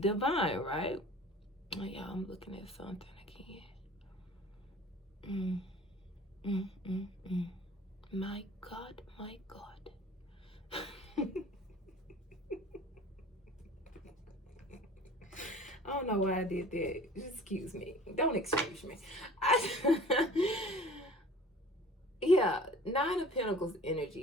right? Oh yeah, I'm looking at something again. My God. I don't know why I did that. Excuse me. Don't excuse me. Yeah, 9 of Pentacles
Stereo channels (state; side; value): normal; both; correlation 0.45